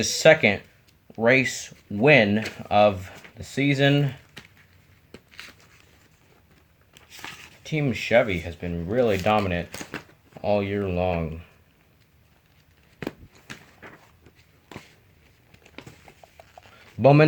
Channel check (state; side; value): identical; both; correlation 1.00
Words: second race win of the season. Team Chevy has been really dominant all year long.